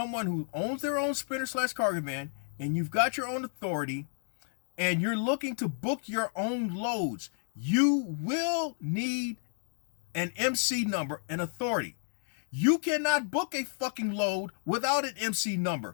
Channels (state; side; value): silent; right; digital silence